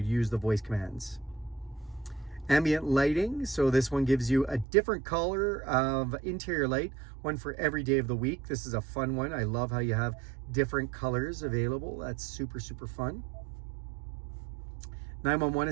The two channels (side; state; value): left; drops out; at 4.7 s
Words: the voice commands. Ambient lighting, so this one gives you a different color of interior light, one for every day of the week. This is a fun one. I love how you have different colors available. That's super, super fun. 911